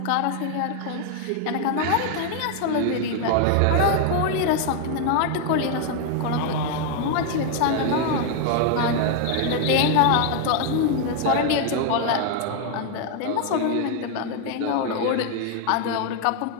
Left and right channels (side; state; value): both; different; correlation 0.00